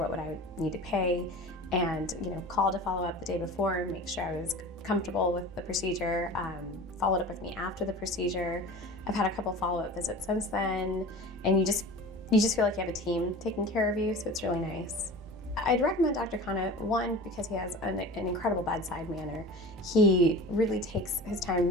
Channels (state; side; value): normal; both; correlation 0.36